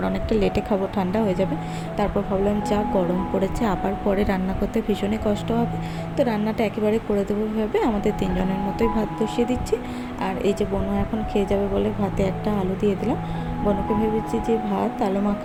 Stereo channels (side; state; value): both; identical; correlation 1.00